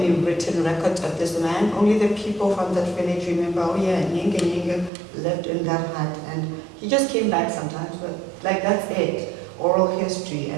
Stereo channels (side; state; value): left; drops out; at 4.9 s